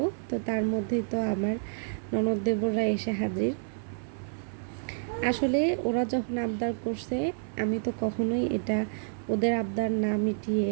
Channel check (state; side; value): silent; left; 58 dB below the other